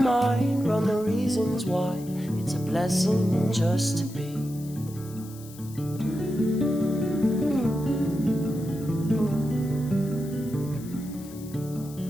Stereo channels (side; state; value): left; noise; hiss, 19 dB below the sound